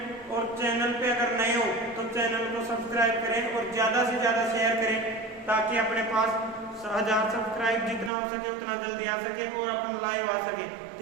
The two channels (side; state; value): left; drops out; at 8.1 s